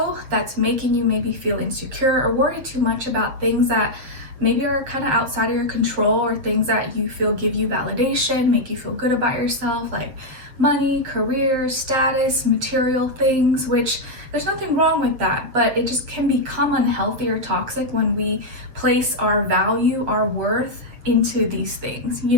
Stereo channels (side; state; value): left; late; 7.5 ms